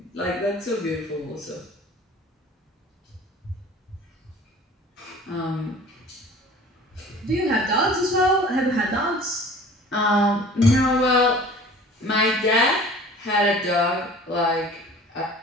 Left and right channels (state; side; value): normal; both; correlation 0.45